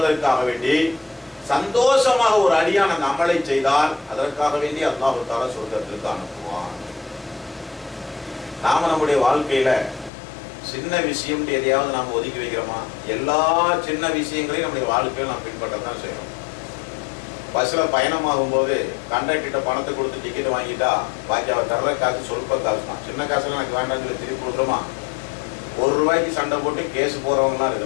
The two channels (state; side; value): drops out; right; at 10.1 s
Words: வேண்டி சந்தோஷமாக ஒரு அடியான் அந்த அமலை செய்தால் அதற்காக வேண்டி அல்லாஹ் தஆலா சொர்க்கத்திற்கு அனுப்புவான். நாம நம்முடைய வாழ்க்கையில சின்ன விஷயம் எதையாவது நாம் ஒதுக்கி வைக்கிறோமா? எல்லா சின்ன விஷயங்களையும் நம்முடைய வாழ்க்கையில் நாம் பின்பற்றத்தான் செய்யறோம். பஸ்ல பயணமாகும் போது கண்டக்டர்கிட்ட பணத்தை கொடுத்து டிக்கெட் வாங்கிட்டா பாக்கி அவர் தர்ற காசு சொல்ப காசு தான். சின்ன காசுலாம் எனக்கு வேண்டாம்னு சொல்லி திருப்பி கொடுக்குறோமா? ₹1 சண்டை போட்டு கேஸ் போறவங்கலாம்